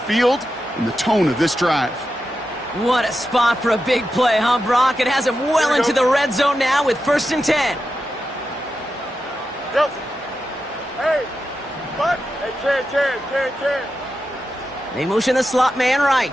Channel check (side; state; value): both; normal; correlation 0.89